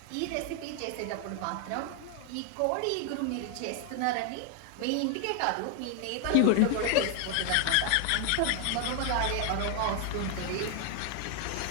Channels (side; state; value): both; different; correlation 0.00